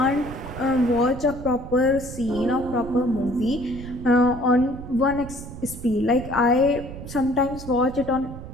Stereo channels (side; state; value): right; noise; rumble, 11 dB below the sound